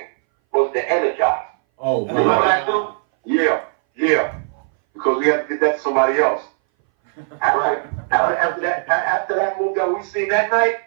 was the Energizer. Oh, You remember that too? Yeah. Because we had to get that to somebody else. Right. After that move that we seen that night,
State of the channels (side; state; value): left; silent; 61 dB below the other